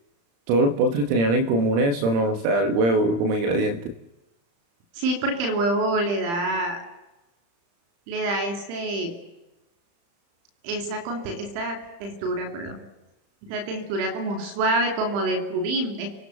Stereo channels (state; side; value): late; left; 35 ms